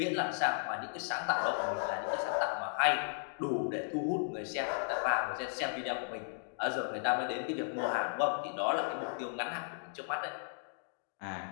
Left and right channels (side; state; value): right; silent; digital silence